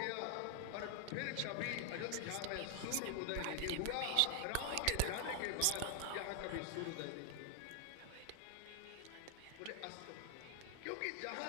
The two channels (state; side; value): different; both; correlation 0.00